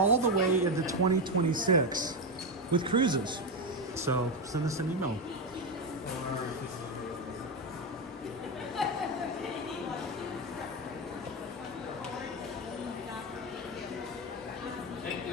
the way into 2026 with cruises. So send us an email.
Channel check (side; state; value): both; normal; correlation 0.11